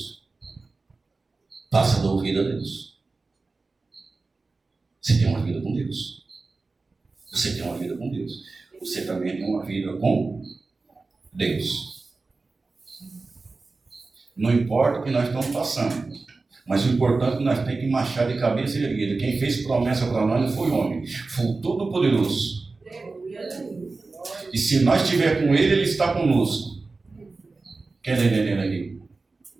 Passa da ouvida a Deus. Você tem uma vida com Deus. Você tem uma vida com Deus. Você também tem uma vida com Deus. Não importa o que nós estamos passando, mas o importante é que nós temos que marchar de cabeça erguida. Quem fez promessa para nós não foi homem, foi o Todo-Poderoso. E se nós estiver com Ele, Ele está conosco. Quem está entendendo aqui?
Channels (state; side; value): quieter; left; 3.7 dB